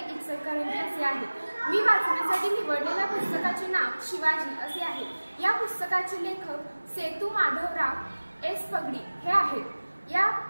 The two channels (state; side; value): inverted; both; correlation -1.00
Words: इचलकरंजी असे आहे। मी वाचण्यासाठी निवडलेल्या पुस्तकाचे नाव शिवाजी असे आहे। या पुस्तकाचे लेखक सेतू माधवराव एस पगडी हे आहेत। या